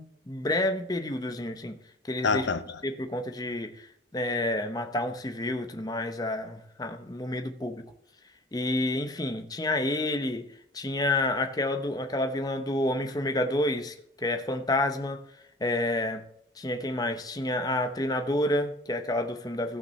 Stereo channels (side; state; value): both; normal; correlation 0.43